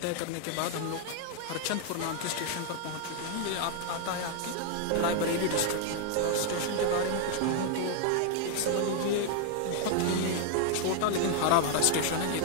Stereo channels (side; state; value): both; different; correlation 0.00